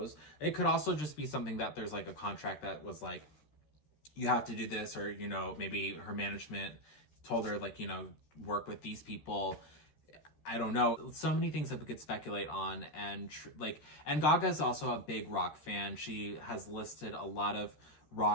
It could also just be something that there's like a contract that was like, you have to do this, or, you know, maybe her management told her, like, you know, work with these people. I don't know. So many things that we could speculate on. And and Gaga's also a big rock fan. She has listed a lot of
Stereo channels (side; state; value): right; late; 13 ms